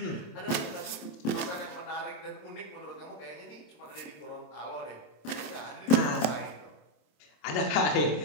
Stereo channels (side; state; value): right; late; 27 ms